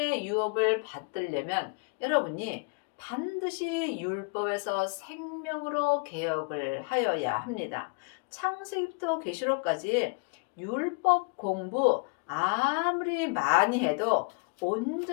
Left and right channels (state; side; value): quieter; right; 33.1 dB